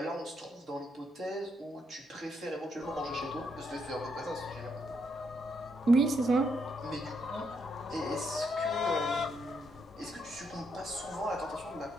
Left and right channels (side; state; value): both; normal; correlation 0.77